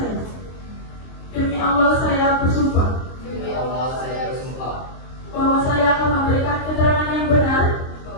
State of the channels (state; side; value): late; right; 23 ms